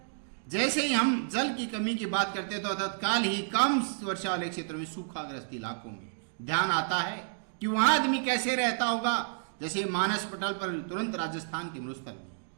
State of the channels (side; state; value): left; silent; digital silence